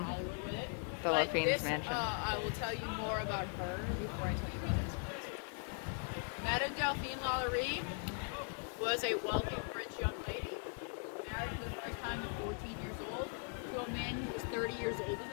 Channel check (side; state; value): right; silent; 51 dB below the other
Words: Delphine's mansion. I will tell you more about her before I tell you about this. Madame Delphine LaLaurie was a wealthy French young lady, married for the first time at 14 years old to a man who was 30 years older